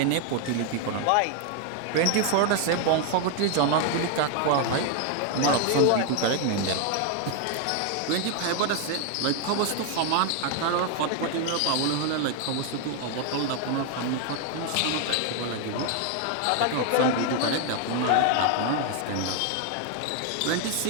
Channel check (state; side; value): different; both; correlation 0.01